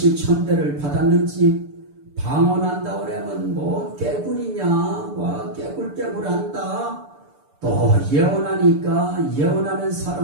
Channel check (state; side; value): late; left; 6.9 ms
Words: 받았는지, 방언한다 그러면 뭐 깨구리냐, 뭐 깨굴깨굴한다. 또 예언하니까 예언하는